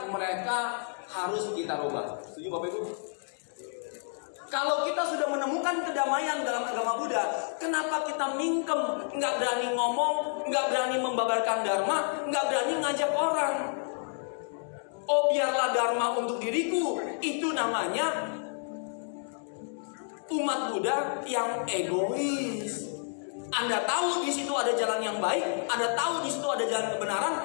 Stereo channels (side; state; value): right; silent; 58 dB below the other